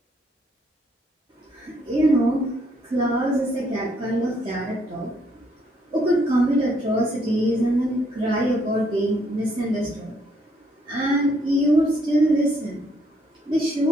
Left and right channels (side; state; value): both; normal; correlation 0.70